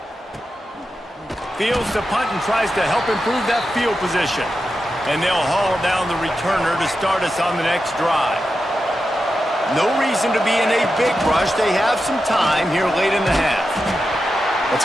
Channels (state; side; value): normal; both; correlation 0.90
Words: Fields to punt and tries to help improve that field position. And they'll haul down the returner to start us on the next drive. No reason to be in a big rush. They have some time here late in the half.